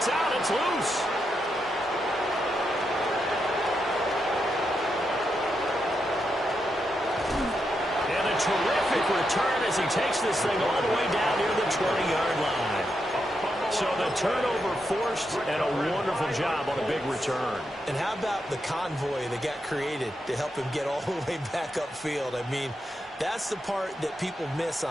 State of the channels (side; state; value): both; normal; correlation 0.84